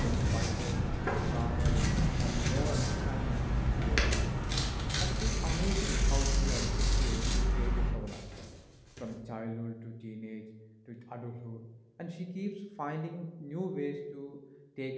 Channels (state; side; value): identical; both; correlation 1.00